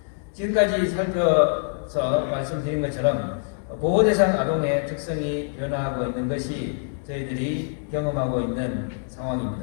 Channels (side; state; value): right; silent; digital silence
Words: 지금까지 살펴서 말씀드린 것처럼 보호 대상 아동의 특성이 변화하고 있는 것이 저희들이 경험하고 있는